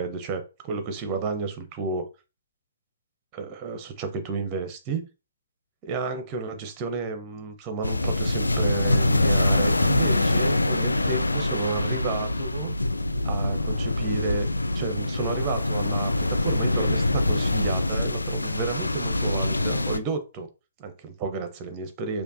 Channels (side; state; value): both; inverted; correlation -0.78